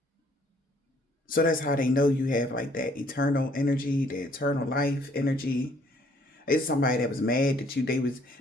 So that's how they know you have like that eternal energy, the eternal life energy. It's somebody that was mad that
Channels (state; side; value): normal; both; correlation 0.62